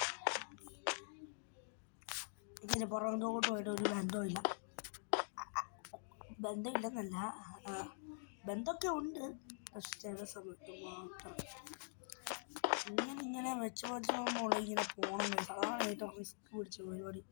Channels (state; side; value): silent; right; digital silence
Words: ഇതിന് പുറത്തോട്ടുമായിട്ട് ഒരു ബന്ധമില്ല. ബന്ധമില്ലെന്നല്ല, ബന്ധമൊക്കെ ഉണ്ട്. പക്ഷെ ചില സമയത്ത് മാത്രം ഇങ്ങനെ വെച്ച് പോകുമ്പോൾ ഇങ്ങനെ പോകണം ഗൈസ്. അതാണ് ഏറ്റവും റിസ്ക് പിടിച്ച പരിപാടി.